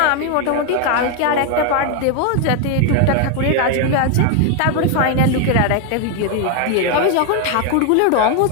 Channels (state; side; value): different; both; correlation 0.01